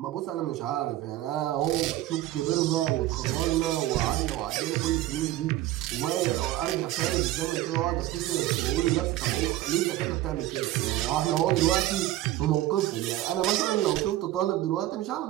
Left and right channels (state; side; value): quieter; left; 15.0 dB